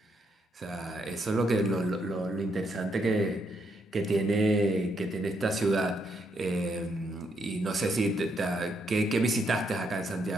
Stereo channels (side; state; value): both; normal; correlation 0.76